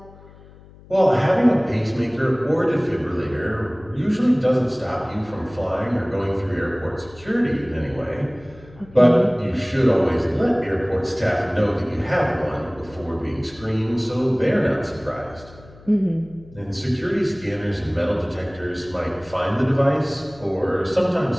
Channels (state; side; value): noise; left; hum, 22 dB below the sound